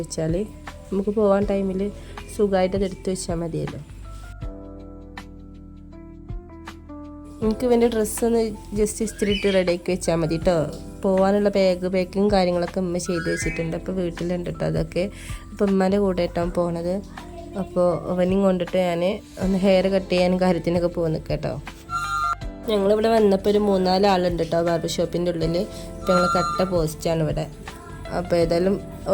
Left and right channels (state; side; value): identical; both; correlation 1.00